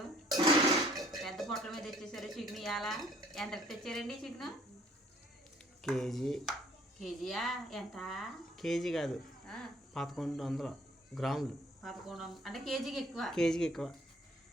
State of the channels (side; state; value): both; normal; correlation 0.58